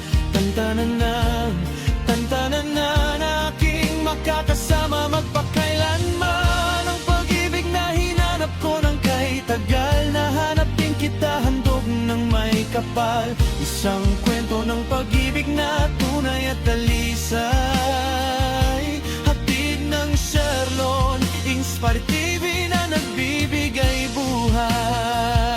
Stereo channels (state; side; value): identical; both; correlation 1.00